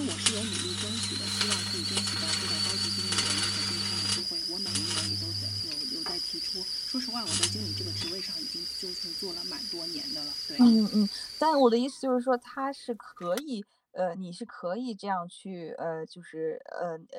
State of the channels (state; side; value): identical; both; correlation 1.00